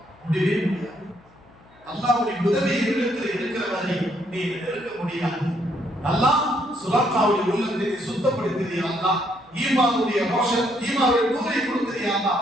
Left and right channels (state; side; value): noise; left; hum, 29 dB below the sound